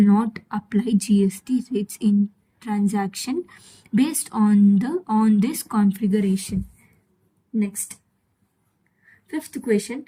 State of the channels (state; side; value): identical; both; correlation 1.00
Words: not apply GST rates in transaction based on this configuration. Next, fifth question.